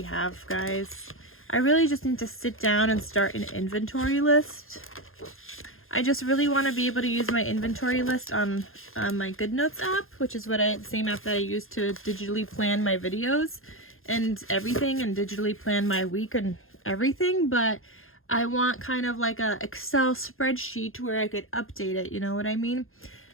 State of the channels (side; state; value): right; late; 0.60 ms